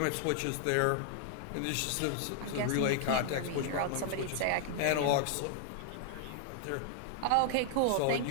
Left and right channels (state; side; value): different; both; correlation 0.00